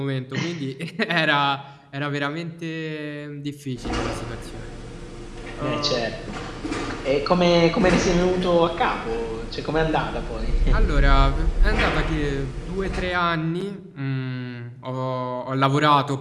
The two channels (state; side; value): identical; both; correlation 1.00